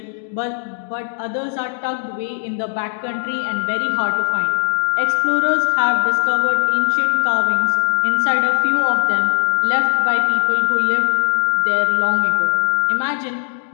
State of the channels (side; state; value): right; silent; digital silence